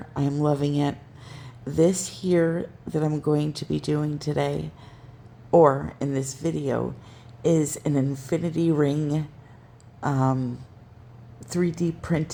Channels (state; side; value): identical; both; correlation 1.00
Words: I am loving it. This here that I'm going to be doing today, or in this video, is an infinity ring 3D